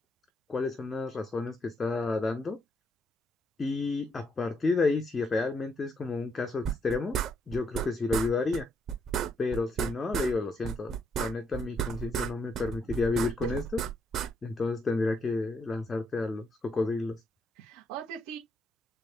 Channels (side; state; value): both; normal; correlation 0.75